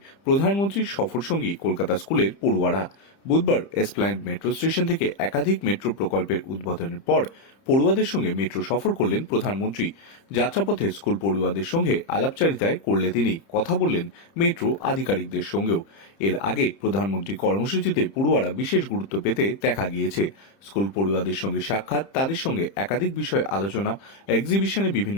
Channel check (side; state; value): right; late; 30 ms